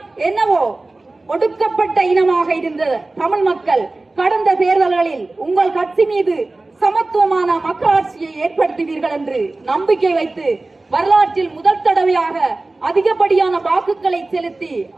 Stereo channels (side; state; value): left; quieter; 3.1 dB